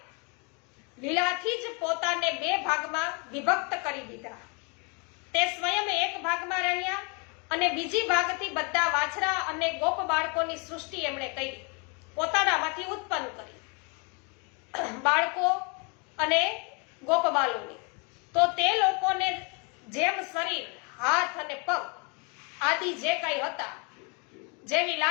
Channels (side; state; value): right; quieter; 33.3 dB